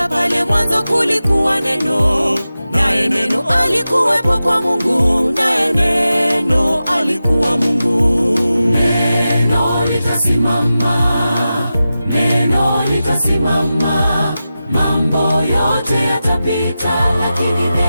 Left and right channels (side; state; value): both; inverted; correlation -0.93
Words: pale mwanzo kulikuwa neno, naye neno alikuwepo kwa Mungu, naye neno alikuwa Mungu. Neno litasimama, neno litasimama. Mambo yote yatapita, lakini